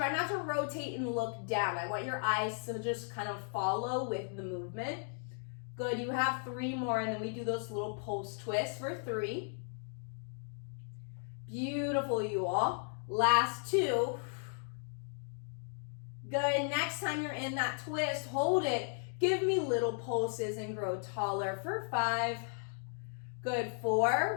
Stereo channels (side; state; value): right; silent; 54 dB below the other